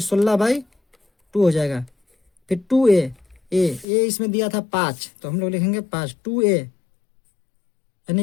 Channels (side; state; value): right; drops out; at 3.9 s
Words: 16/2 हो जाएगा। फिर 2a, ए इसमें दिया था 5 तो हम लोग लिखेंगे 5, 2a